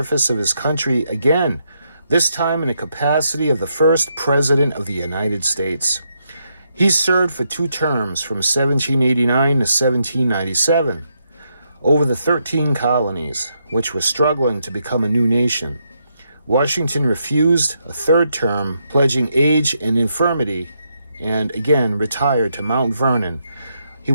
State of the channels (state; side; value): inverted; both; correlation -0.79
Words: of his country again, this time in the capacity of the first President of the United States. He served for 2 terms from 1789 to 1797 over the 13 colonies, which were struggling to become a new nation. Washington refused a 3rd term, pledging age and infirmity, and again retired to Mount Vernon. He